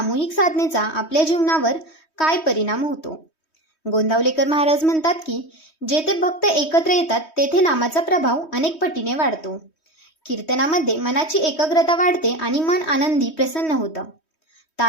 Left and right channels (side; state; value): right; late; 3.2 ms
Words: साधनेचा आपल्या जीवनावर काय परिणाम होतो. गोंदावलेकर महाराज म्हणतात की जेथे भक्त एकत्र येतात तेथे नामाचा प्रभाव अनेक पटीने वाढतो. कीर्तनामध्ये मनाची एकाग्रता वाढते आणि मन आनंदी प्रसन्न होतं.